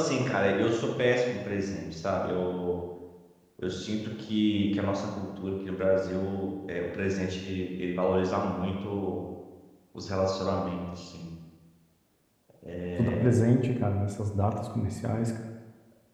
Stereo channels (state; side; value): identical; both; correlation 1.00